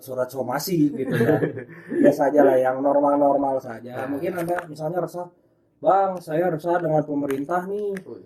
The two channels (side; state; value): both; identical; correlation 1.00